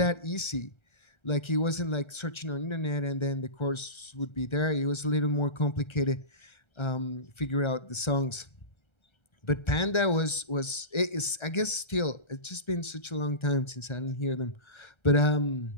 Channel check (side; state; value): right; late; 1.3 ms